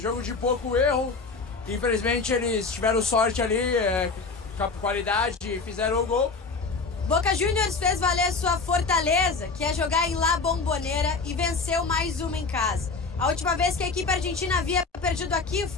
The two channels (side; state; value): right; quieter; 4.3 dB